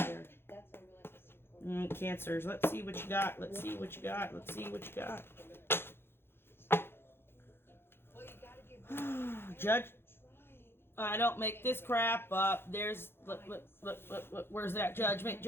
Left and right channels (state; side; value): late; right; 0.11 ms